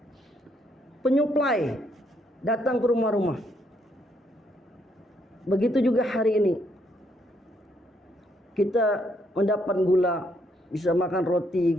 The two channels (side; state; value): both; normal; correlation 0.73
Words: penyuplai datang ke rumah-rumah. Begitu juga hari ini kita mendapat gula, bisa makan roti,